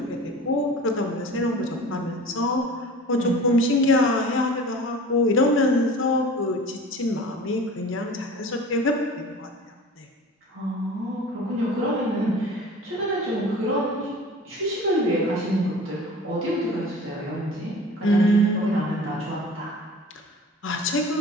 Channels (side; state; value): both; normal; correlation 0.41